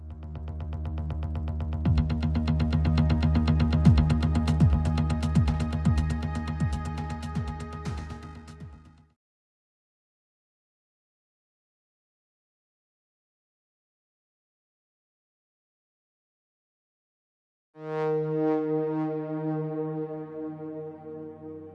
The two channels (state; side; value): identical; both; correlation 1.00